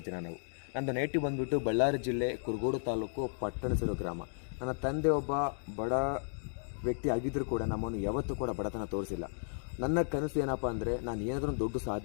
ಜನ ನಾವು. ನಂದು ನೇಟಿವ್ ಬಂದುಬಿಟ್ಟು ಬಳ್ಳಾರಿ ಜಿಲ್ಲೆ ಕುರುಗೋಡು ತಾಲೂಕು ಪಟ್ಟಣಸಿರು ಗ್ರಾಮ. ನನ್ನ ತಂದೆ ಒಬ್ಬ ಬಡ ವ್ಯಕ್ತಿ ಆಗಿದ್ದರೂ ಕೂಡ ನಮ್ಮನ್ನು ಯಾವತ್ತೂ ಕೂಡ ಬಡತನ ತೋರಿಸಿಲ್ಲ. ನನ್ನ ಕನಸು ಏನಪ್ಪ ಅಂದರೆ, ನಾನು ಏನಾದರೂ ದೊಡ್ಡ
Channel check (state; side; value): silent; right; digital silence